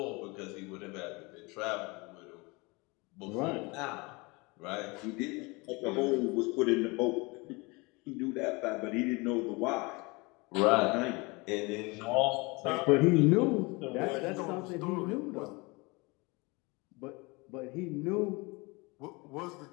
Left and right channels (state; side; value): quieter; right; 26.3 dB